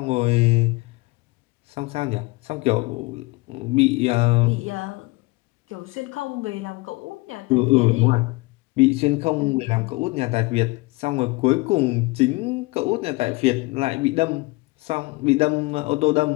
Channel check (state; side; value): quieter; right; 23.7 dB